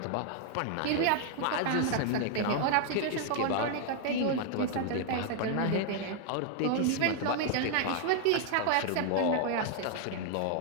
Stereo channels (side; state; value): both; different; correlation 0.00